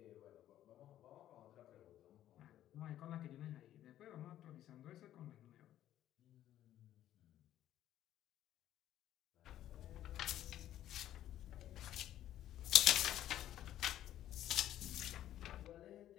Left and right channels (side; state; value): right; quieter; 12.3 dB